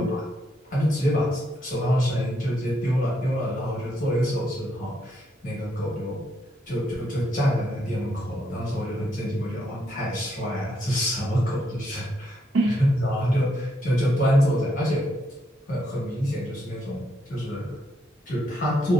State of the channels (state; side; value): normal; both; correlation 0.77